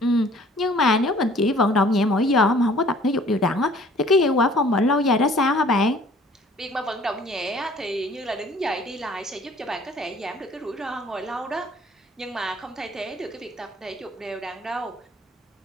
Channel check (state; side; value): normal; both; correlation 0.54